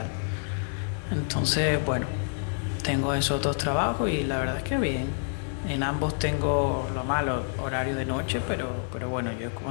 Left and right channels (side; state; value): right; silent; digital silence